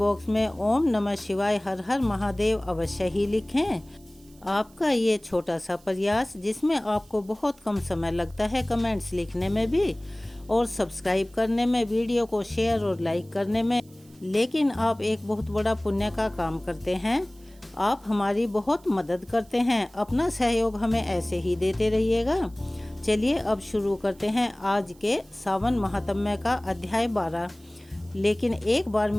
में ओम नमः शिवाय हर हर महादेव अवश्य ही लिखें। आपका ये छोटा सा प्रयास, जिसमें आपको बहुत कम समय लगता है कमेंट्स लिखने में भी और सब्सक्राइब करने में, वीडियो को शेयर और लाइक करने में, लेकिन आप एक बहुत बड़ा पुण्य का काम करते हैं। आप हमारी बहुत मदद करते हैं। अपना सहयोग हमें ऐसे ही देते रहिएगा। चलिए अब शुरू करते हैं आज के सावन महात्म्य का अध्याय 12। लेकिन एक बार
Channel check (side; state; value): right; noise; hiss, 28 dB below the sound